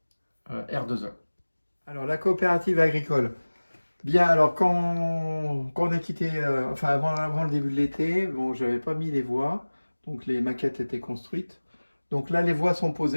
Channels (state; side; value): inverted; both; correlation -1.00